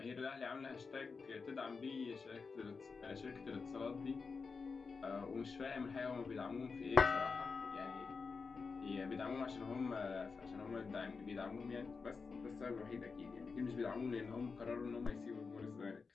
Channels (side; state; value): right; quieter; 4.8 dB